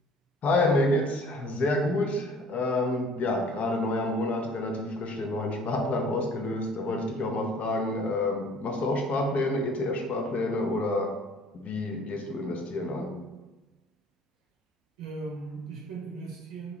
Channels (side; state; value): both; normal; correlation 0.52